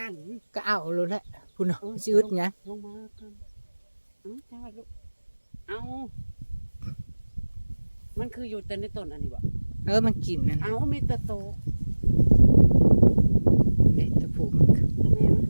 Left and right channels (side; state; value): both; inverted; correlation -1.00